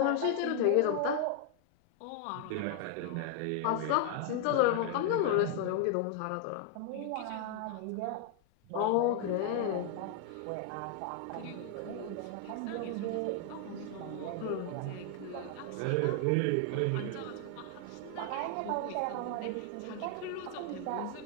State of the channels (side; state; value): both; different; correlation 0.00